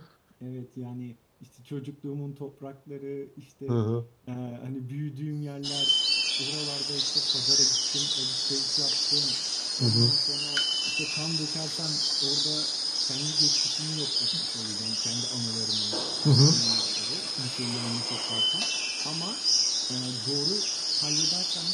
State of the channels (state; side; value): identical; both; correlation 1.00